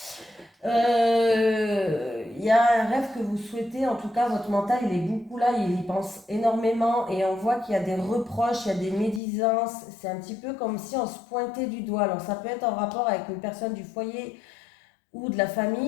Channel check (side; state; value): right; drops out; at 9.2 s